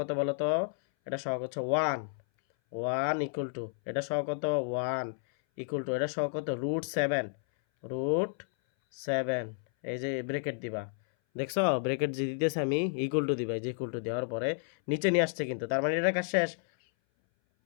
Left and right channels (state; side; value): silent; right; 57 dB below the other